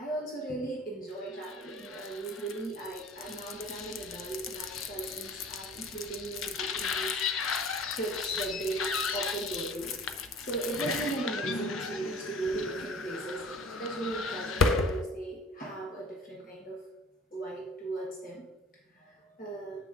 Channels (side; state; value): both; normal; correlation 0.45